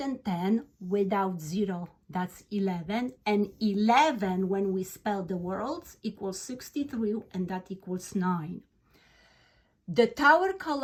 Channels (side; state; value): both; identical; correlation 1.00